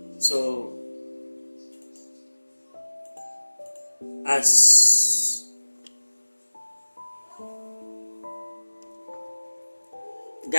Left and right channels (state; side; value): inverted; both; correlation -1.00